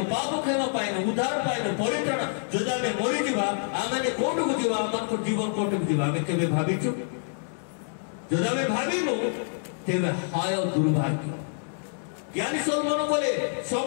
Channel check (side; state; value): right; silent; digital silence